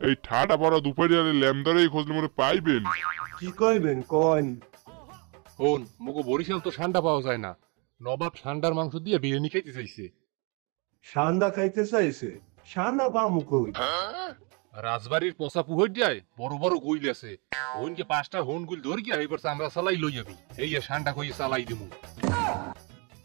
ঠাডা পড়া দুপুরে ল্যামদারে খোঁজলে মনে পাইবেন। কি কইবেন কন? হন, মুগো বরিশাল তো ষান্ডা পাওয়া যায় না। নবাব ষান্ডার মাংস দিয়ে বিরিয়ানি খাইতে চাইছে। সান্দা খাইতে চাইছে? সান্দা পামু কই? রাজবাড়ির পোষা পুহর দিয়ায় বড় বড় গুইল আছে। হনকে 5টা হন গুইল ধর গিয়া এবার আমরা চালাই লই যাবি। এই ষান্ডা কইয়ে চালাই দিমু।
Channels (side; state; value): left; quieter; 32.3 dB